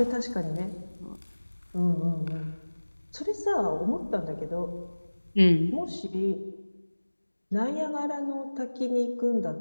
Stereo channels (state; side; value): inverted; both; correlation -1.00